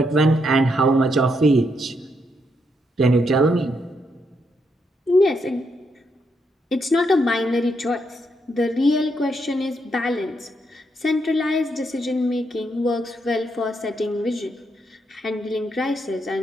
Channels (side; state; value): both; normal; correlation 0.78